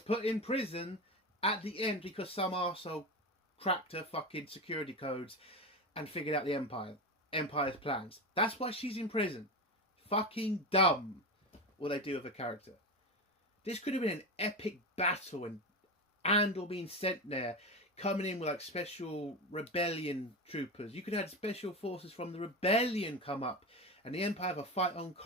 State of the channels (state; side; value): normal; both; correlation 0.20